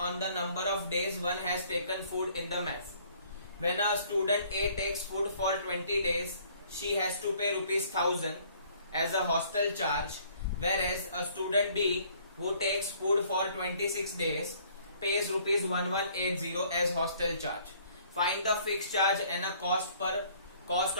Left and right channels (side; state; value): both; inverted; correlation -0.59